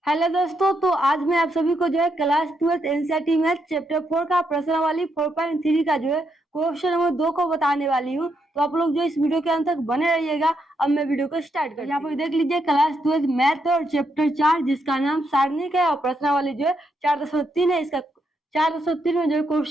Hello दोस्तों, तो आज मैं आप सभी को जो है क्लास 12 एनसीईआरटी मैथ चैप्टर 4 का प्रश्नावली 4.3 का जो है क्वेश्चन नंबर 2 को बताने वाली हूँ। तो आप लोग जो इस वीडियो के अंत तक बने रहिएगा। अब मैं वीडियो को स्टार्ट करती हूँ। यहाँ पर देख लीजिए क्लास 12 मैथ और चैप्टर 4 जिसका नाम सारणिक है और प्रश्नावली जो है 4.3 है। इसका 4.3 में जो है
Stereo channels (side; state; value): both; normal; correlation 0.79